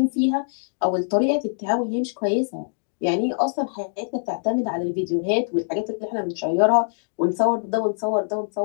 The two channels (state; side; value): silent; right; digital silence